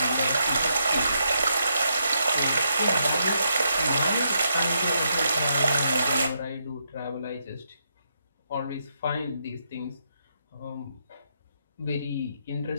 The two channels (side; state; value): both; inverted; correlation -0.79